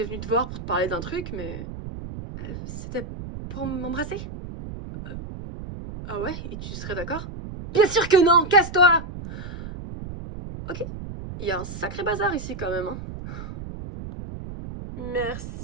venue te voir pour te parler d'un truc, mais... c'était pour m'embrasser? Ah ouais? Et tu serais d'accord? Bien sûr que non! Casse-toi! Ok. Il y a un sacré bazar ici quand même, hein.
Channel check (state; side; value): noise; right; rumble, 10 dB below the sound